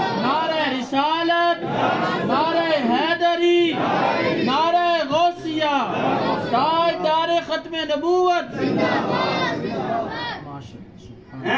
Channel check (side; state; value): both; identical; correlation 1.00